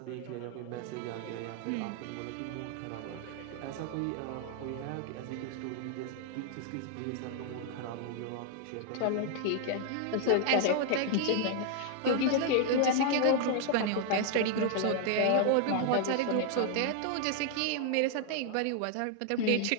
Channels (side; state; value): both; different; correlation 0.00